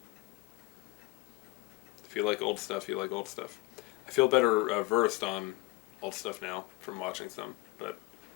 If you like old stuff, you like old stuff. I feel better versed on old stuff now from watching some, but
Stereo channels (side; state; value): right; quieter; 21.7 dB